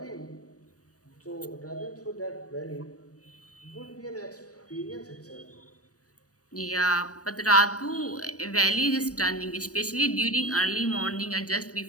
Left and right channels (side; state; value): right; late; 0.66 ms